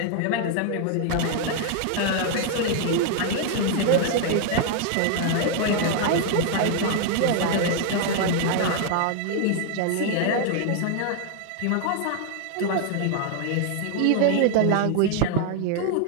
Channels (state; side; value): different; both; correlation 0.00